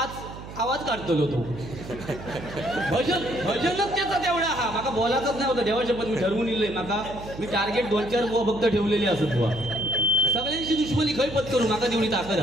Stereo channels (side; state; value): right; noise; hum, 13 dB below the sound